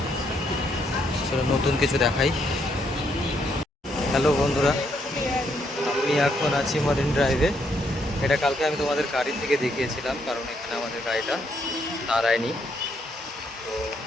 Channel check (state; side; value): normal; both; correlation 0.74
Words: সেটা নতুন কিছু দেখাই। হ্যালো বন্ধুরা, আমি এখন আছি মারিন ড্রাইভে। এটা কালকে আমি তোমাদের গাড়ি থেকে দেখিয়েছিলাম, কারণ এখানে আমাদের গাড়িটা দাঁড়ায়নি। তো